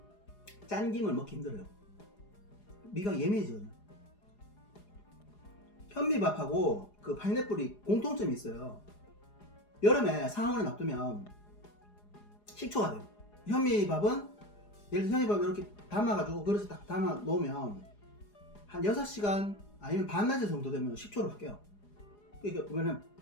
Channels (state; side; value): late; right; 4.8 ms